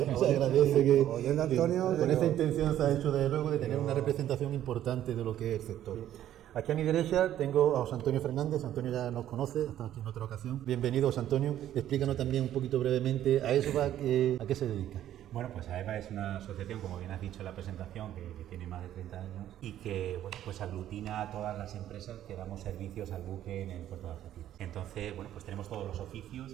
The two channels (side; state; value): left; quieter; 11.9 dB